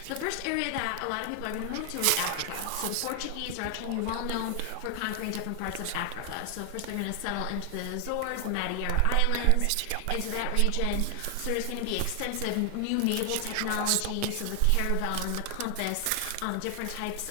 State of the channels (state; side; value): different; both; correlation 0.00